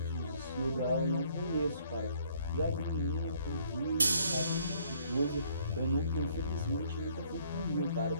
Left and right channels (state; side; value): inverted; both; correlation -0.63